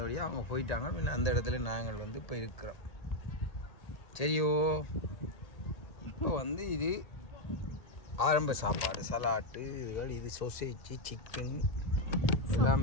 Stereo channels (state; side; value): late; right; 1.8 ms